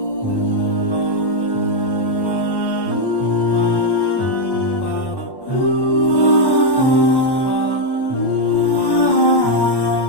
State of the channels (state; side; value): late; right; 1.1 ms